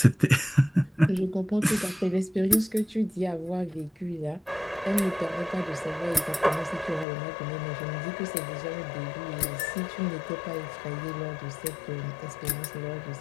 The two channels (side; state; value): right; drops out; at 7.1 s